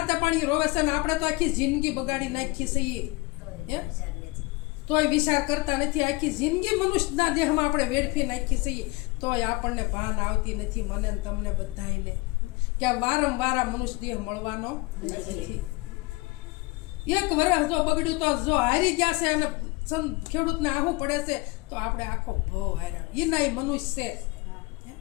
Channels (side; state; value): right; quieter; 24.1 dB